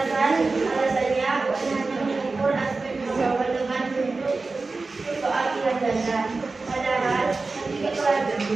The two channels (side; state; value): left; quieter; 3.8 dB